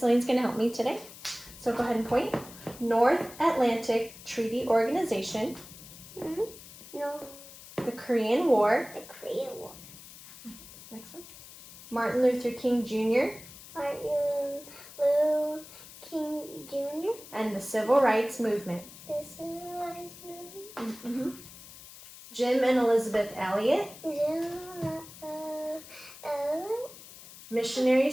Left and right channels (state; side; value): noise; left; hiss, 17 dB below the sound